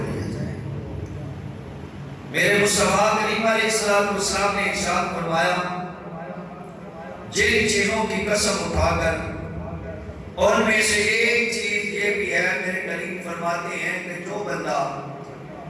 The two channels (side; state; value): both; identical; correlation 1.00